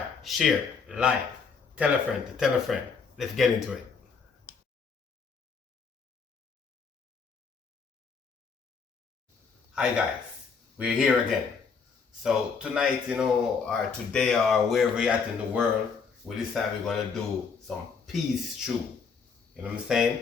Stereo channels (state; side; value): quieter; right; 5.5 dB